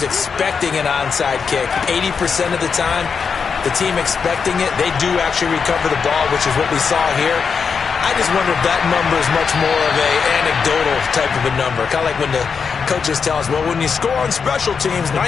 expecting an onside kick, 80% of the time, the team expecting it, they do actually recover the ball, which is what we saw here. I just wonder if that number is much more of a anecdotal type of a number. Kind of like when the coaches tell us, well, when you score on special teams,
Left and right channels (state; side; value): quieter; right; 5.9 dB